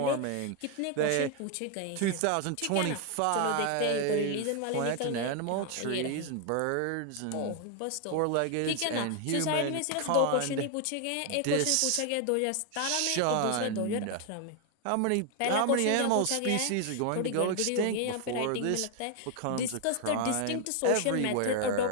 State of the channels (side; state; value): both; different; correlation 0.01